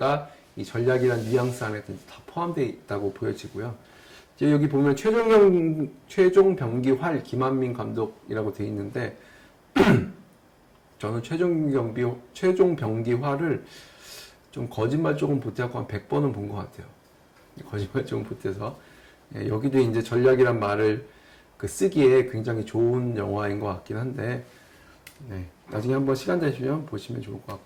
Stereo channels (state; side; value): identical; both; correlation 1.00